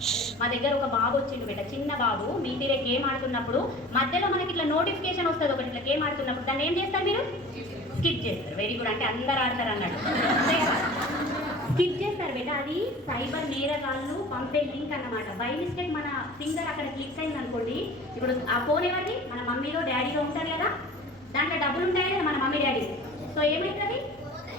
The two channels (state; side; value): normal; both; correlation 0.41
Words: మా దగ్గర ఒక బాబు వచ్చిండు బేట, చిన్న బాబు. మీ తీరే గేమ్ ఆడుతున్నప్పుడు మధ్యలో మనకి ఇట్లా నోటిఫికేషన్ వస్తుంది ఒకటి, ఇట్లా గేమ్ ఆడుతున్నప్పుడు దాన్ని ఏం చేస్తారు మీరు? స్కిప్ చేస్తారు. వెరీ గుడ్, అంటే అందరు ఆడతారు అన్నట్టు. స్కిప్ చేస్తారు బేట. అది సైబర్ నేరగాళ్ళు పంపే లింక్ అన్నమాట. బై మిస్టేక్ మన ఫింగర్ అక్కడ క్లిక్ అయింది అనుకోండి, ఇప్పుడు ఆ ఫోన్ ఎవరిది? మన మమ్మీలో డాడీలో ఉంటారు కదా, దాంట్లో డబ్బులు ఉంటాయి కదా మన మమ్మీ డాడీ. సో ఏమవుతుంది?